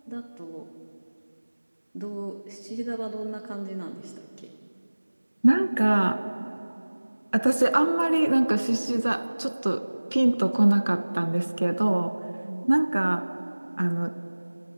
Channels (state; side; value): inverted; both; correlation -1.00